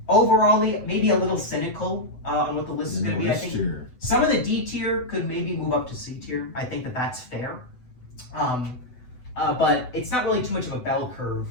overall, maybe a little cynical on what the list is going to be. I think some of the D tier could maybe move up to C tier. I think that's fair. But it's not really too much of a bell curve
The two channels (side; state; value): right; late; 8.0 ms